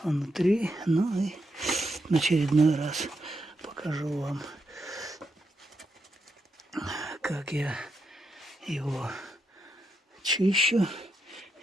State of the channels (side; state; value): both; normal; correlation 0.83